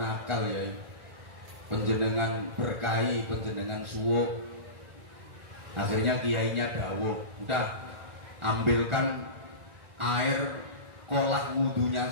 nakal yai, panjenengan berkahi, panjenengan suwuk. Akhirnya kiainya dawuh, udah ambilkan air kolah wudunya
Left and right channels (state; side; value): late; left; 1.4 ms